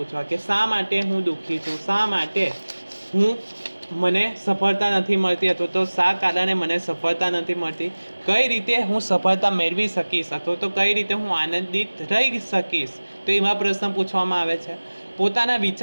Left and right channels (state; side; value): inverted; both; correlation -1.00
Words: કે શા માટે હું દુઃખી છું, શા માટે મને સફળતા નથી મળતી અથવા તો શા કારણે મને સફળતા નથી મળતી, કઈ રીતે હું સફળતા મેળવી શકીશ અથવા તો કઈ રીતે હું આનંદિત રહી શકીશ. તો એવા પ્રશ્ન પૂછવામાં આવે છે. પોતાના